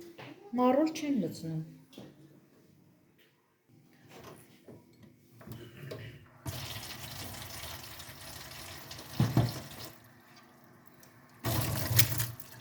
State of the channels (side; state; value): both; identical; correlation 1.00